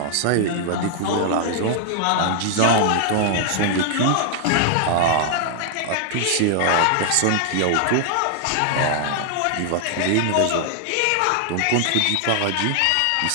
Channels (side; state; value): both; different; correlation -0.01